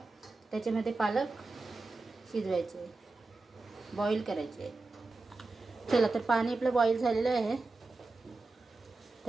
त्याच्यामध्ये पालक शिजवायचे, बॉईल करायचे। चला तर पाणी आपलं बॉईल झालेलं आहे।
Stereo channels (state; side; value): quieter; left; 3.4 dB